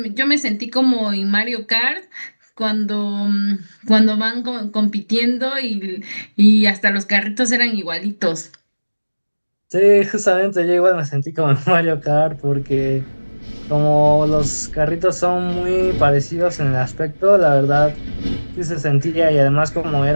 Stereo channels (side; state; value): both; inverted; correlation -1.00